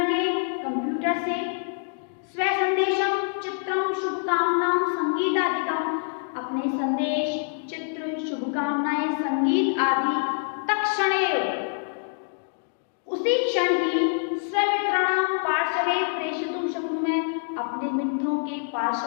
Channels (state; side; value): silent; right; digital silence